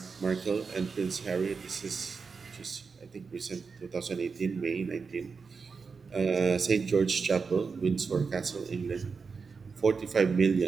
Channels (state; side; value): quieter; left; 5.1 dB